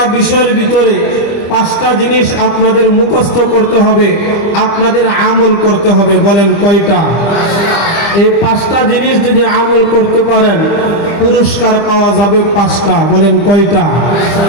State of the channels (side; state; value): right; late; 25 ms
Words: বিষয়ের ভিতরে পাঁচটা জিনিস আপনাদের মুখস্থ করতে হবে, আপনাদের আমল করতে হবে। বলেন কয়টা? এই পাঁচটা জিনিস যদি আমল করতে পারেন পুরস্কার পাওয়া যাবে পাঁচটা। বলেন কয়টা?